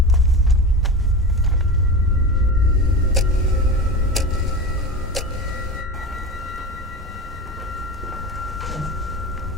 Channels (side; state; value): both; normal; correlation 0.27